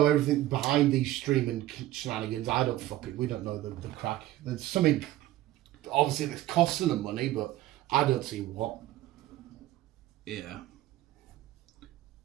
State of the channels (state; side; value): quieter; left; 14.9 dB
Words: everything behind these streaming shenanigans. We don't know the crack. There's something, obviously, that's costing them money, but I don't see what. Yeah.